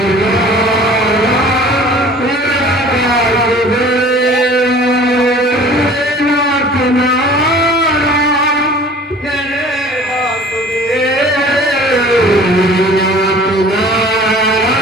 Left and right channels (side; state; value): both; normal; correlation 0.47